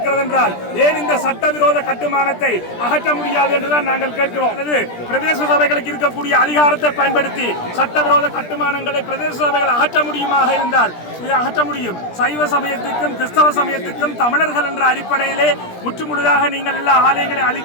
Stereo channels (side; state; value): right; late; 17 ms